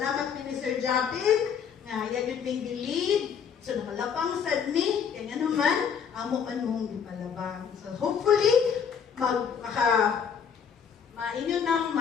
ni Sir Japin nga yan yun may lead. So, nakalapang sad ni, kaya naman, amo man mong gipalabang. So, hopefully, mainyo nang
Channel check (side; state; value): right; quieter; 7.2 dB